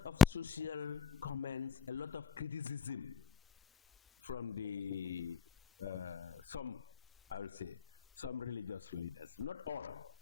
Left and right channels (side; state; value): right; quieter; 6.7 dB